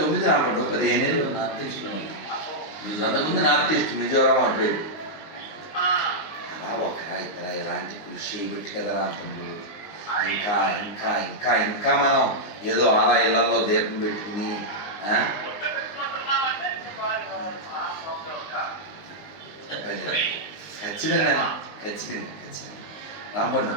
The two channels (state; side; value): late; right; 19 ms